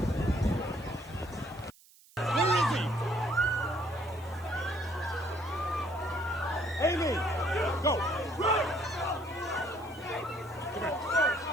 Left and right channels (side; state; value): right; noise; hiss, 26 dB below the sound